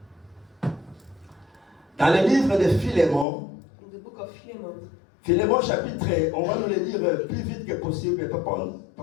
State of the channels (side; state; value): right; drops out; at 3.2 s